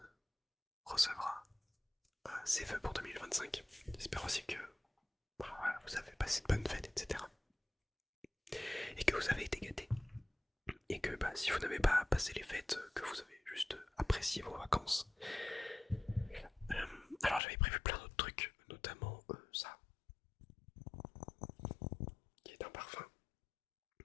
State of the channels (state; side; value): drops out; right; at 17.4 s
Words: recevra ses vœux pour 2025. J'espère aussi que voilà, vous avez passé de bonnes fêtes, etc. Et que vous avez été gâtés. Et que si vous n'avez pas passé les fêtes, que vous avez juste apprécié vos vacances. Alors j'avais prévu plein d'autres trucs, notamment ça.